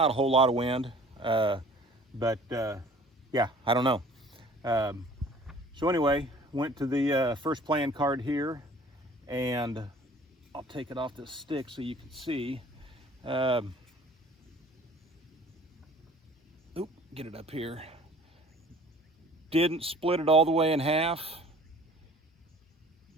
a whole lot of wind, but yeah, I don't know. So anyway, went to the first playing card here, and I'll take it off this stick so you can see. Oop, get it up here. Didn't split it all the way in half,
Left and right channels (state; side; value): normal; both; correlation 0.50